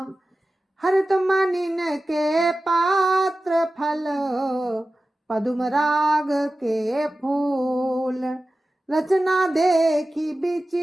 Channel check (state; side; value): normal; both; correlation 0.95